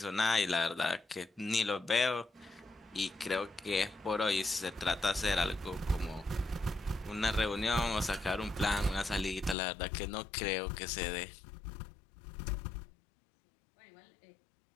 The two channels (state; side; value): drops out; right; at 9.6 s